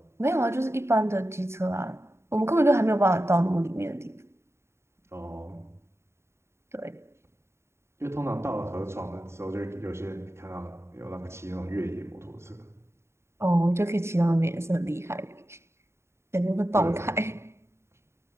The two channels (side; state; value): left; late; 0.13 ms